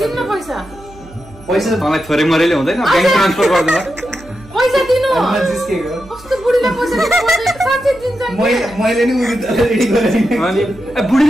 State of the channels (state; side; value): noise; right; hum, 22 dB below the sound